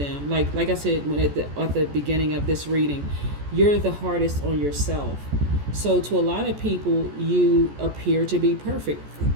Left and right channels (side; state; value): left; late; 14 ms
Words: Like I said when at the beginning of this reading, you're the hardest on yourself. So to a lot of people, you appear to be perfect.